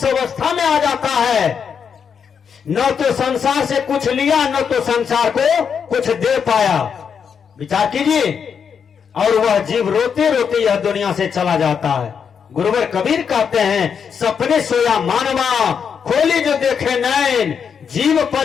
अवस्था में आ जाता है, न तो संसार से कुछ लिया, न तो संसार को कुछ दे पाया। विचार कीजिए, और वह जीव रोते रोते यह दुनिया से चला जाता है। गुरुवर कबीर कहते हैं, सपने सोया मानवा, खोली जो देखे नैन, जीव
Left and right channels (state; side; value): quieter; right; 6.9 dB